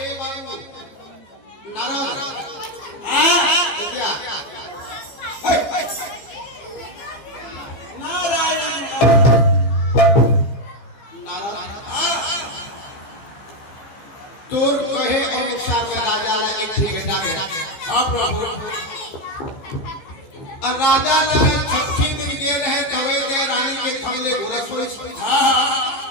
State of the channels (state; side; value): late; right; 15 ms